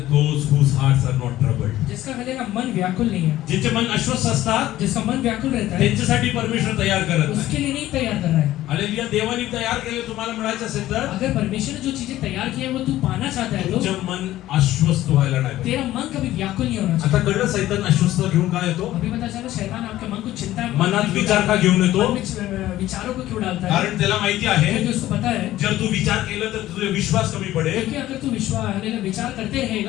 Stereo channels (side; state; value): right; quieter; 14.6 dB